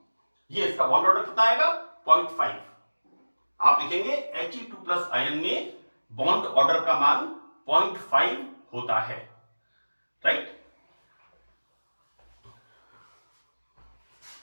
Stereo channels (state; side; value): inverted; both; correlation -1.00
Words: ये इसका बॉन्ड ऑर्डर कितना आएगा, 0.5। आप लिखेंगे He2 प्लस आयन में बॉन्ड ऑर्डर का मान 0.5 होता है, राइट।